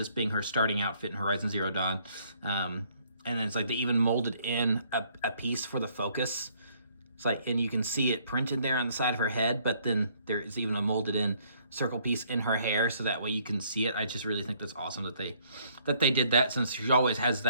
being her starting outfit in Horizon Zero Dawn. And then it's like they even molded in a piece for the focus. It's like, and you can see it printed there on the side of her head, but then there is even a molded in circle piece in her hair, so that way you can see it. I just really think that's awesome that they did that, since she always has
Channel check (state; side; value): inverted; both; correlation -0.65